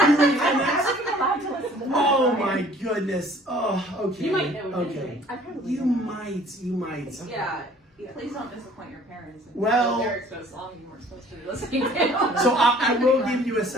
wasn't allowed to listen to that. Oh my goodness. Oh, okay. You might know it Okay. anyway. I probably You don't. might. Yeah. Please don't disappoint your parents. And Well- lyrics to a song you weren't supposed to be listening to. So I will give you a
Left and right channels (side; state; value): both; normal; correlation 0.53